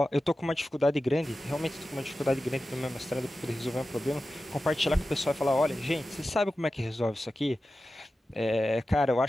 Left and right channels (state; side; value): normal; both; correlation 0.93